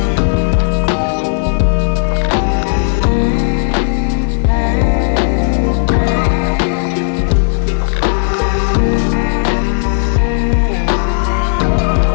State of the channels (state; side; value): silent; right; digital silence